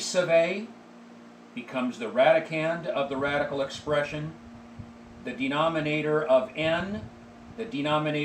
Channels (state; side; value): identical; both; correlation 1.00